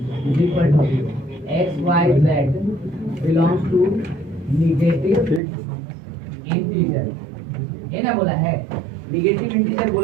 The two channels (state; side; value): drops out; left; at 5.4 s